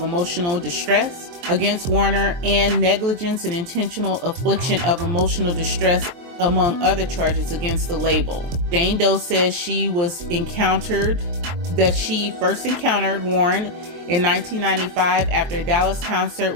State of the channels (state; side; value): late; left; 23 ms